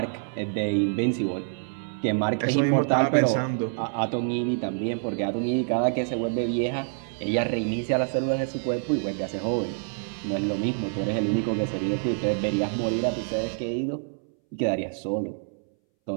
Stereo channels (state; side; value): silent; left; 61 dB below the other